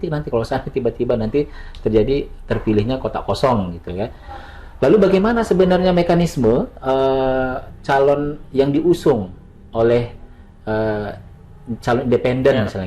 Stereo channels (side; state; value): both; identical; correlation 1.00